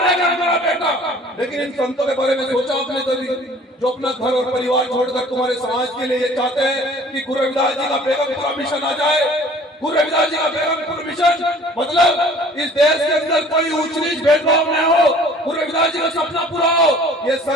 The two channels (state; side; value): normal; both; correlation 0.50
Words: गया हमारा बेटा। लेकिन इन संतों के बारे में सोचा आपने कभी, जो अपना घर और परिवार छोड़कर तुम्हारे समाज के लिए ये चाहते हैं कि गुरु रविदास जी का बेगमपुरा मिशन आ जाए। गुरु रविदास जी का बेगमपुरा मिशन मतलब इस देश के अंदर कोई ऊंच नीच भेदभाव न हो, गुरु रविदास जी का सपना पूरा हो। ये